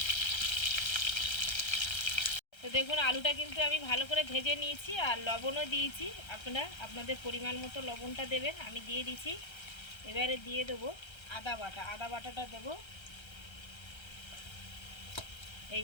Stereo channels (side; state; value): right; late; 1.3 ms